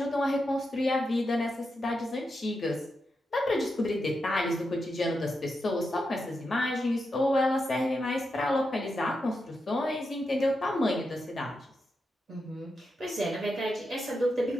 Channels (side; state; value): both; normal; correlation 0.87